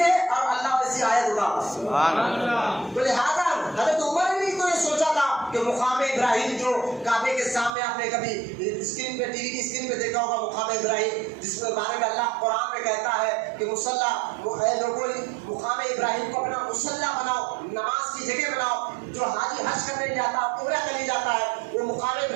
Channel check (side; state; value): left; drops out; at 7.7 s